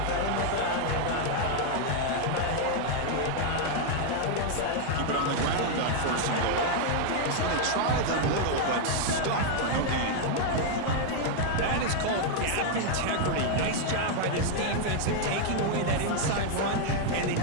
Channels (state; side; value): different; both; correlation 0.00